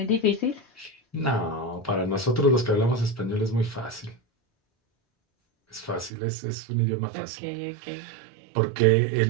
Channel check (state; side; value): drops out; left; at 6.1 s